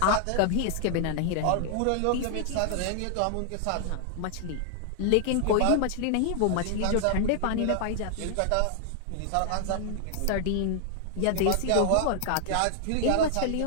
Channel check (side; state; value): both; different; correlation 0.00